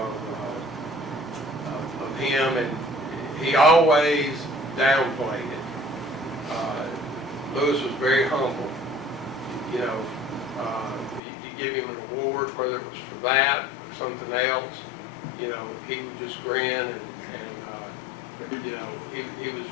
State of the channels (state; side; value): drops out; right; at 11.2 s